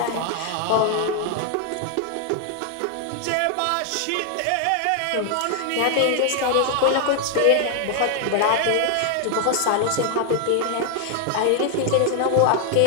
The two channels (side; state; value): both; different; correlation 0.00